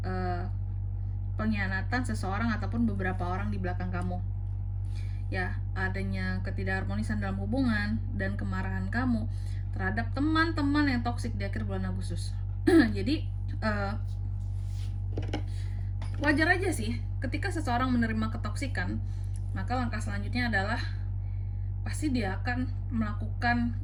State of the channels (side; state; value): both; identical; correlation 1.00